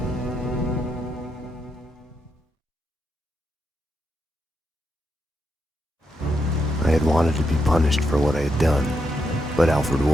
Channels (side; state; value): both; normal; correlation 0.82